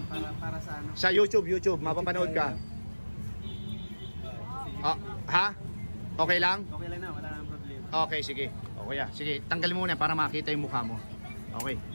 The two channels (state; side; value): inverted; both; correlation -1.00